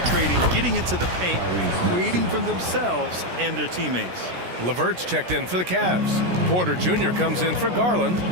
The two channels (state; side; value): late; left; 17 ms